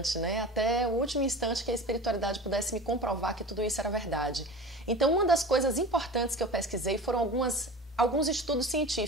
né? Até o último instante que a espiritualidade pudesse me comprovar que tudo isso era verdade. Então, uma das coisas importantes que eu pesquisei foram alguns estudos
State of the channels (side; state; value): both; normal; correlation 0.35